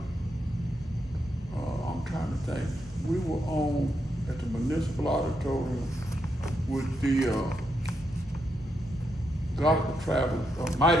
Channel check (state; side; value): normal; both; correlation 0.82